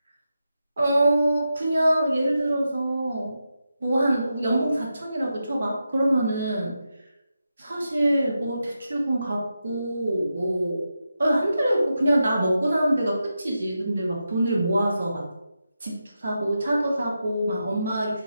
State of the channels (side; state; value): both; inverted; correlation -0.88